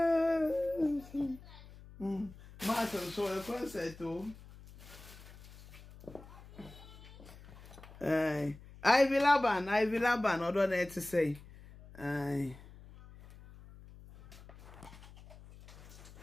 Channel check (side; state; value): left; noise; hum, 19 dB below the sound